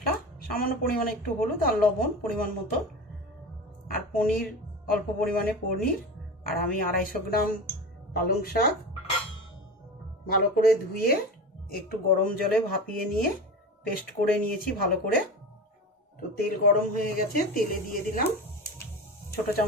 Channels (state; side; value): normal; both; correlation 0.28